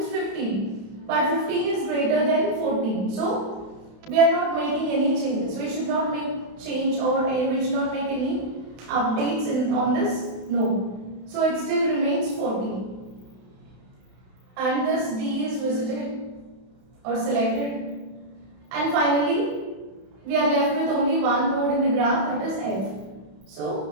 15. But 15 is greater than 14. So we are not making any changes. We should not make change, or we should not make any updates on this node. So it still remains 14. And this D is visited or selected. And finally, we are left with only one node in the graph, that is F.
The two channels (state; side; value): late; left; 31 ms